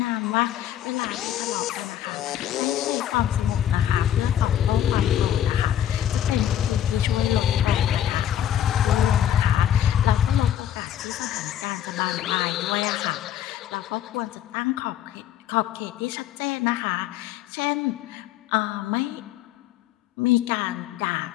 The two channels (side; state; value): right; quieter; 10.7 dB